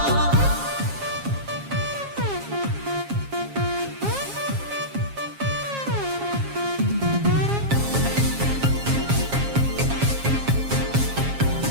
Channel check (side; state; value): left; late; 7.4 ms